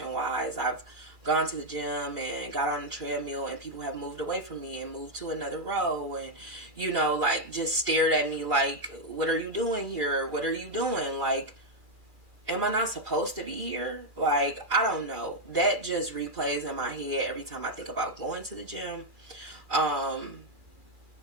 wise. I've gone to the gym and got on the treadmill and people have moved away from me and moved to another row and, like just stared at me like, what are you doing here? What are you doing? Like, am I not supposed to be here? Like, I don't know. That just replays in my head every time I think about going to the gym. And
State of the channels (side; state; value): left; late; 2.4 ms